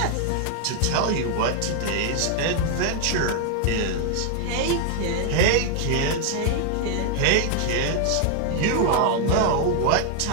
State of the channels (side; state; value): both; different; correlation 0.00